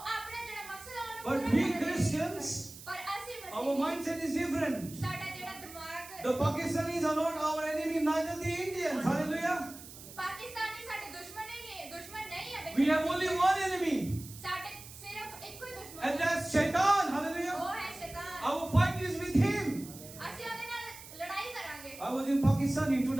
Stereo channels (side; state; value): right; noise; hiss, 15 dB below the sound